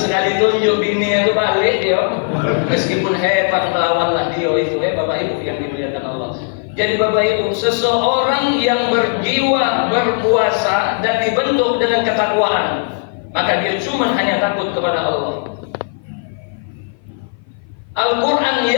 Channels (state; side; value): silent; right; 55 dB below the other